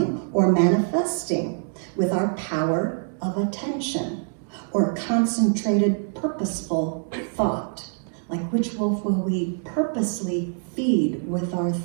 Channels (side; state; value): left; silent; 55 dB below the other